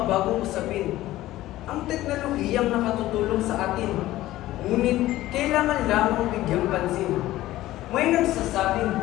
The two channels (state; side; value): quieter; right; 15.8 dB